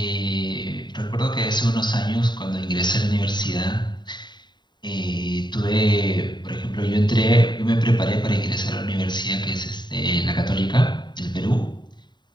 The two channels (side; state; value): right; late; 0.21 ms